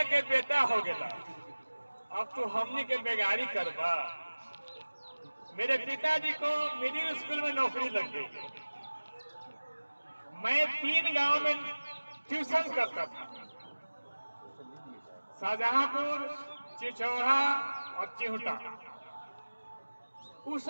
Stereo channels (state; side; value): inverted; both; correlation -1.00